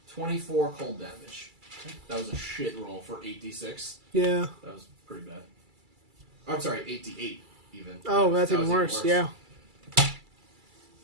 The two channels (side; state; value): left; late; 2.3 ms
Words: 24 cold damage. That was a shit roll for 8d6. Yeah. That was pretty bad. I'm sorry, 8d8 even. Oh, that's That even was worse. Yeah.